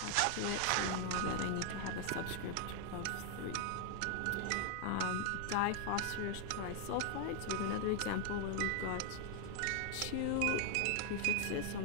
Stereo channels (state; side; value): different; both; correlation 0.00